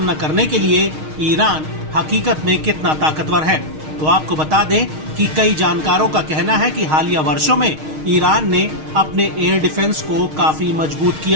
करने के लिए ईरान हकीकत में कितना ताकतवर है। तो आपको बता दें कि कई जानकारों का कहना है कि हालिया वर्षों में ईरान ने अपने एयर डिफेंस को काफी मजबूत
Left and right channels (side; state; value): left; late; 6.4 ms